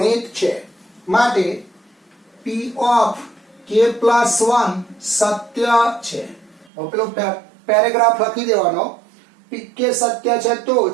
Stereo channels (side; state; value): left; drops out; at 6.7 s